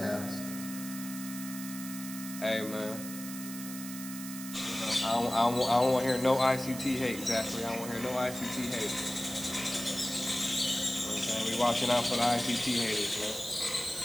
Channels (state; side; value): noise; right; hiss, 10 dB below the sound